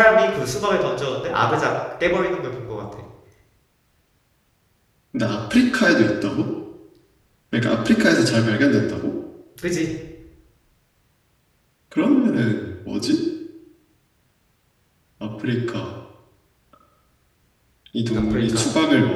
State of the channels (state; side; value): identical; both; correlation 1.00